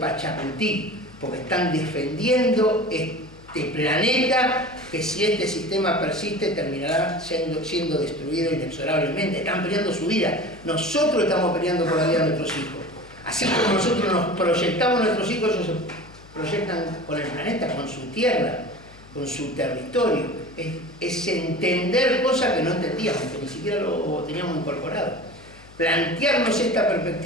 porque están defendiendo este planeta que si este sistema persiste terminará siendo destruido inexorablemente. Están peleando su vida. Nosotros estamos peleando por la vida de nuestros hijos. Así como nosotros nos proyectamos a nuestros hijos, ellos se proyectan con el planeta, con su tierra, con su territorio. Es entender cosas que no entendíamos, que ni siquiera lo teníamos incorporado. Plantearnos esta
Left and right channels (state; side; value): noise; left; hum, 23 dB below the sound